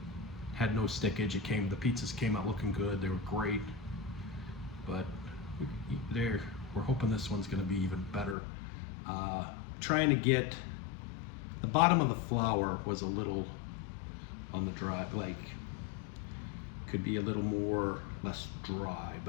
had no stickage. The pizzas came out looking good. They were great, but we're hoping this one's going to be even better. Trying to get the bottom of the flour was a little on the dry, like could be a little less dry,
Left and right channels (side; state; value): right; drops out; at 8.3 s